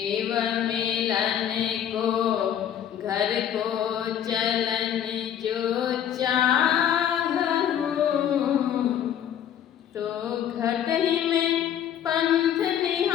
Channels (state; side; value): quieter; right; 9.7 dB